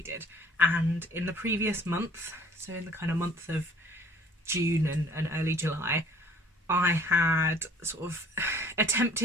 and in the previous month, so in the kind of month of June and early July, I had sort of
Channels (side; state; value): both; normal; correlation 0.54